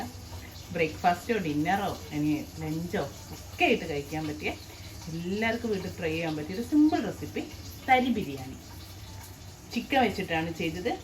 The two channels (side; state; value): both; identical; correlation 1.00